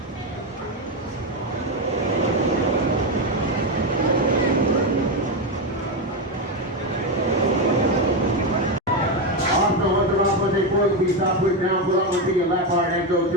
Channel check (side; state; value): both; normal; correlation 0.10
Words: Please stop, put down, pull out to your left heart and go